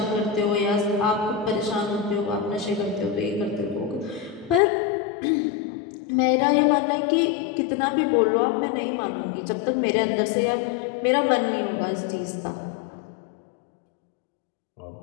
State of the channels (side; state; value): right; drops out; at 4.6 s